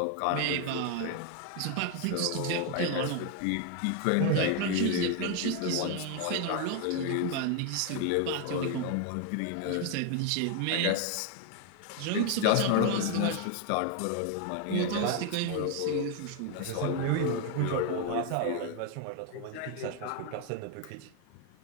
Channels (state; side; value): different; both; correlation 0.01